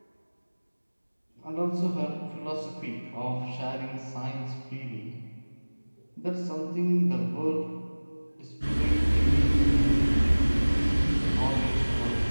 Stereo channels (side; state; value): both; inverted; correlation -1.00